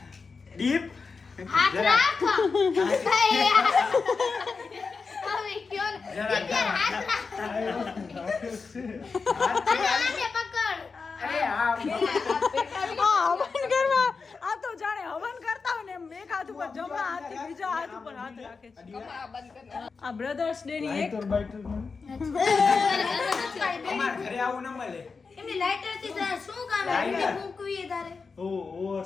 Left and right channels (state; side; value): quieter; right; 4.8 dB